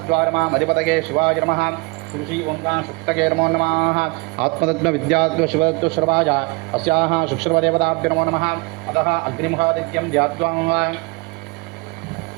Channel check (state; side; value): quieter; left; 27.1 dB